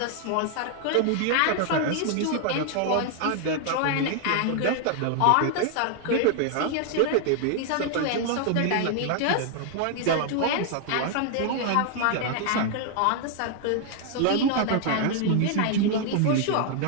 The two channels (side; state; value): both; different; correlation 0.00